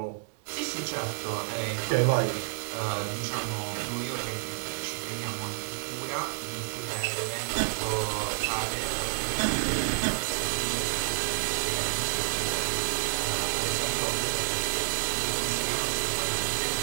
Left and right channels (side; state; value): left; silent; 58 dB below the other